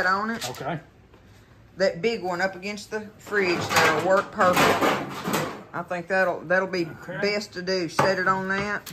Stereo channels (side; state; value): both; identical; correlation 1.00